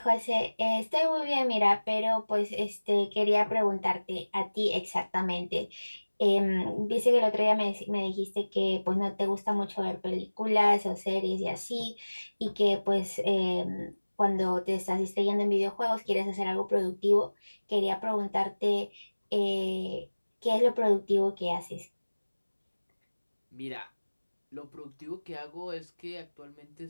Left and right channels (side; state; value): both; inverted; correlation -1.00